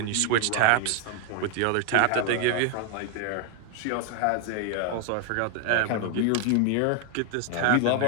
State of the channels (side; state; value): both; different; correlation 0.01